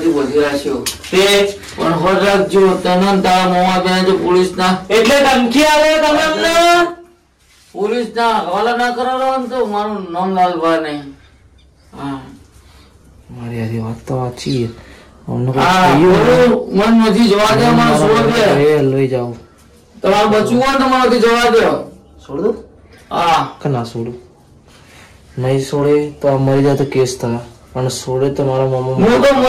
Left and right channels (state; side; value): identical; both; correlation 1.00